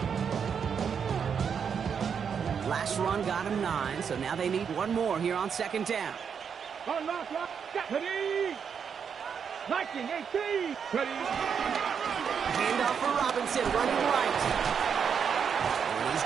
Last run got him 9, so now they need one more here on 2nd down. Ready. 19, 18. Ready. Handoff for Robinson, running right. And he's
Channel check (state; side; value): quieter; left; 7.0 dB